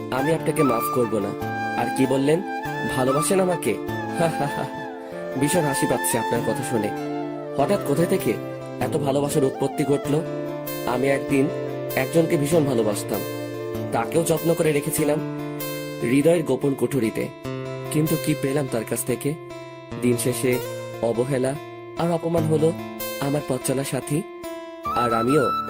আমি আপনাকে মাফ করব না। আর কি বললেন, ভালোবাসেন আমাকে? ভীষণ হাসি পাচ্ছে আপনার কথা শুনে। হঠাৎ কোথায় থেকে এত ভালোবাসার উৎপত্তি ঘটলো? আমি একদিন একজনকে ভীষণ ভালোবাসতাম, তাকেও যত্ন করে রেখেছিলাম হৃদয়ের গোপন কুঠুরিতে। কিন্তু কি পেলাম তার কাছ থেকে? দিন শেষে অবহেলা আর অপমান হলো আমার পথ চলার সাথী। আর আমিও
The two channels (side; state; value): both; identical; correlation 1.00